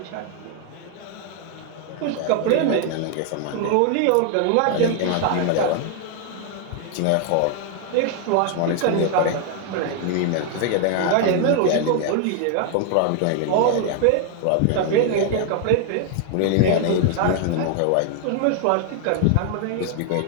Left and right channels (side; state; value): both; different; correlation 0.00